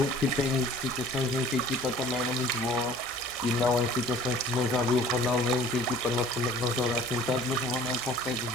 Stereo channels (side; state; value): both; normal; correlation 0.49